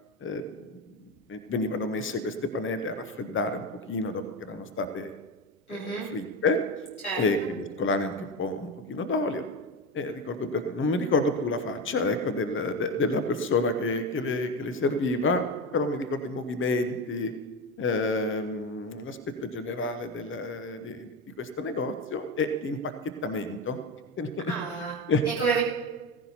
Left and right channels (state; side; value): normal; both; correlation 0.19